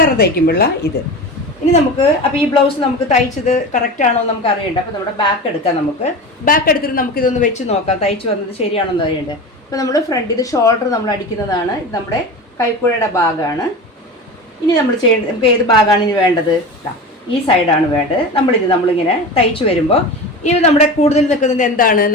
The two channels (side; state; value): both; normal; correlation 0.29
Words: തയ്ക്കുമ്പോഴുള്ള ഇത്. ഇനി നമുക്ക് അപ്പോൾ ഈ ബ്ലൗസ് നമുക്ക് തയ്ച്ചത് കറക്റ്റാണോ എന്ന് നമുക്ക് അറിയണ്ട. അപ്പോൾ നമ്മുടെ ബാക്ക് എടുക്കാം. നമുക്ക് ബാക്ക് എടുത്തിട്ട് നമുക്കിതൊന്ന് വെച്ച് നോക്കാം തയ്ച്ച് വന്നത് ശരിയാണോ എന്ന് അറിയണ്ടേ. അപ്പോൾ നമ്മൾ ഫ്രണ്ട് ഇത് ഷോൾഡർ നമ്മൾ അടിക്കുന്നതാണ്. ഇത് നമ്മുടെ കൈക്കുഴയുടെ ഭാഗമാണ്. ഇനി നമ്മൾ ചെയ്യേണ്ടത് നമുക്ക് ഏത് ഭാഗമാണ് ഇനി വേണ്ടത്? ഈ സൈഡാണ് വേണ്ടത്. നമ്മളിങ്ങനെ തയ്ച്ച് വരുമ്പോൾ ഇത് നമ്മുടെ കൂടുതൽ നിൽക്കുന്നത് എന്താണ്?